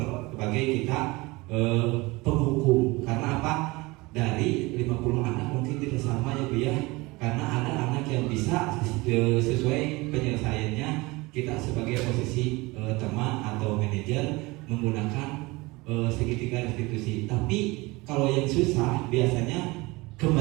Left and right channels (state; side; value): quieter; left; 23.0 dB